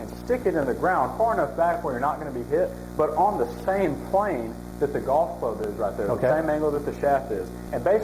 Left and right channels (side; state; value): both; identical; correlation 1.00